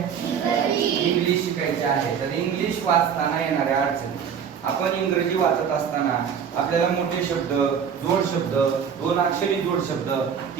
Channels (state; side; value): quieter; left; 7.4 dB